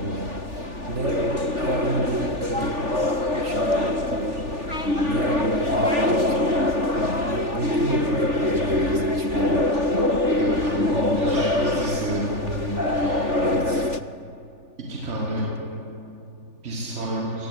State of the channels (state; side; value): late; left; 3.4 ms